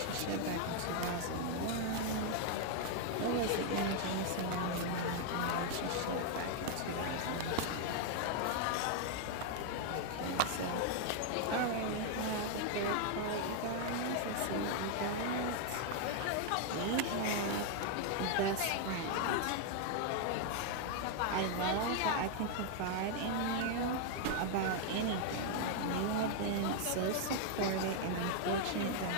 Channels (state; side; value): different; both; correlation 0.00